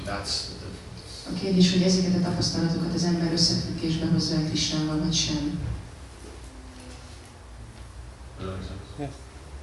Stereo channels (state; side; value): identical; both; correlation 1.00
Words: That's the difference. A kérdés, hogy ezeket a tapasztalatokat az ember összefüggésbe hozza el Krishnával, vagy sem. Yes.